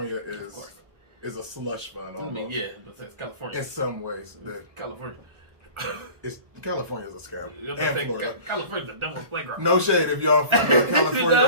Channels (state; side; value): late; left; 1.2 ms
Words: is a slush fund. Almost. I mean, yeah, but it's California in some ways. California. California's a scam. And Florida. California's the devil's playground. No shade if y'all from California